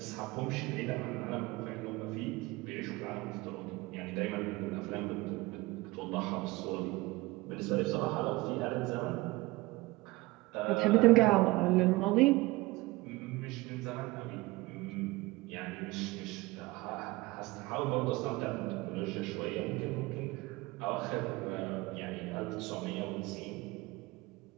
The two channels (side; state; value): left; quieter; 21.1 dB